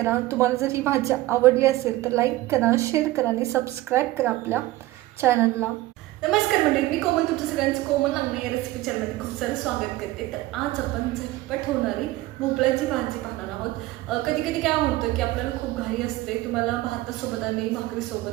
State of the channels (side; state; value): left; quieter; 17.5 dB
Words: तुम्हाला जर ही भाजी आवडली असेल तर लाईक करा, शेअर करा आणि सबस्क्राईब करा आपल्या चॅनलला. नमस्कार मंडळी, मी कोमल, तुमचं सगळ्यांचं कोमल लागणे या रेसिपी चॅनलमध्ये खूप सारं स्वागत करते. तर आज आपण झटपट होणारी भोपळ्याची भाजी पाहणार आहोत. कधी कधी काय होतं की आपल्याला खूप घाई असते, तुम्हाला भातासोबत आणि